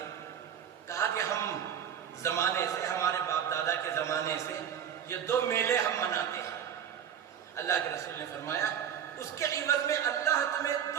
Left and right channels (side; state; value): left; quieter; 8.7 dB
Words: کہا کہ ہم زمانے سے، ہمارے باپ دادا کے زمانے سے یہ دو میلے ہم مناتے ہیں۔ اللہ کے رسول نے فرمایا اس کے عوض میں اللہ تمہیں